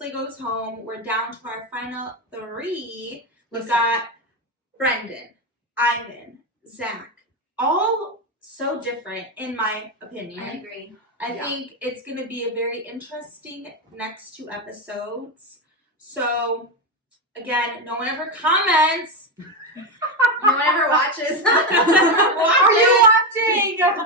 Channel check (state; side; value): normal; both; correlation 0.11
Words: goes home. We're down to our final 3. We've got Brendan, Ivan, Zach. All so different, in my opinion. I agree. I think it's going to be a very interesting next 2 episodes. So, again, no one ever comments. No one ever watches. Are you watching?